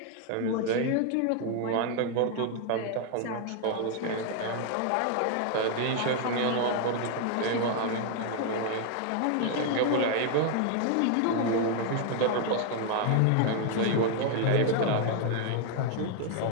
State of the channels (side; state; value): both; different; correlation 0.00